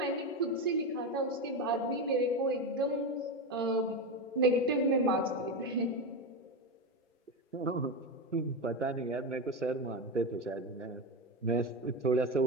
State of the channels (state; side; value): normal; both; correlation 0.16